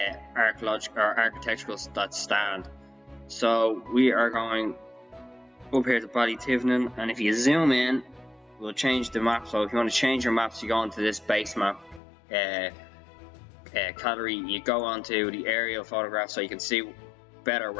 architectural that stand. So we are going up here to Ballytivenin, and if you zoom in, we'll change the map. So if you want to change your maps, you go into this base map category, you go onto the aerial photograph so you can see better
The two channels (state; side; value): drops out; right; at 12.0 s